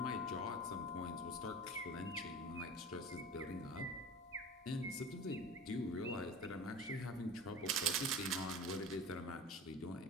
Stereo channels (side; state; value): both; normal; correlation 0.35